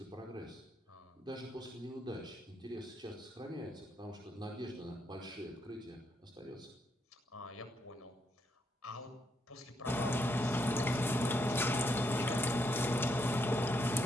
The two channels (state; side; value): normal; both; correlation 0.77